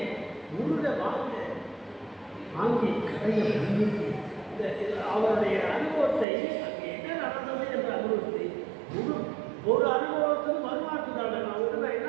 முருக வாங்கி கடையை முன்னிட்டு அவருடைய அனுபவத்தை அங்கே என்ன நடந்தது என்ற அனுபவத்தை ஒரு அனுபவத்துக்கு மறுமாற்றுதாங்க. நான் உடனே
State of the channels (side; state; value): left; drops out; at 6.2 s